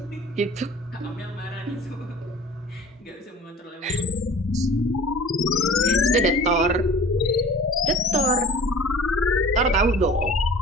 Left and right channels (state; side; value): normal; both; correlation 0.44